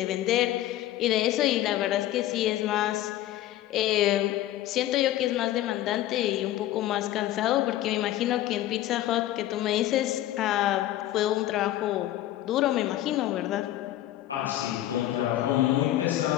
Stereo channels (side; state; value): right; quieter; 14.0 dB